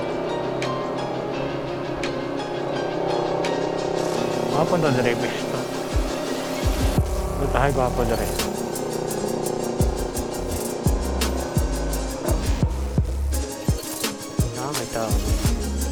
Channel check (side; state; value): both; identical; correlation 1.00